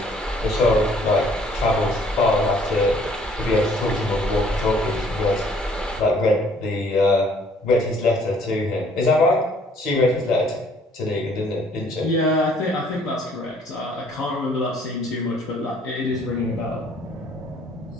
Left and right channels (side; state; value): both; normal; correlation 0.60